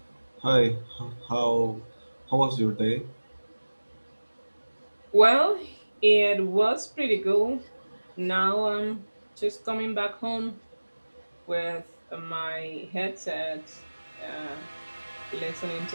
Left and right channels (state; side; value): inverted; both; correlation -1.00